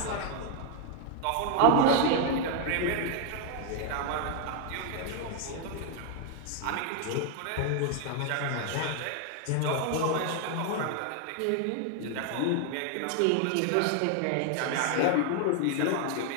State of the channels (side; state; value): both; different; correlation 0.00